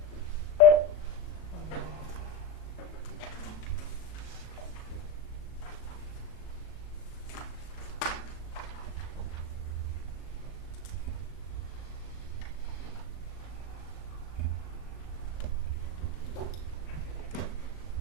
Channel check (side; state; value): right; late; 38 ms